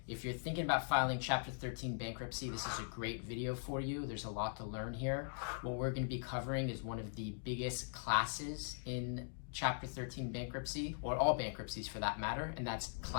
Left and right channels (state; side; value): silent; right; digital silence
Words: If you're thinking about filing Chapter 13 bankruptcy, this is a great video for you. There's a lot to learn here. What we're going to be covering is one of the biggest classes in Chapter 13 bankruptcy, or all bankruptcies for that matter, and that's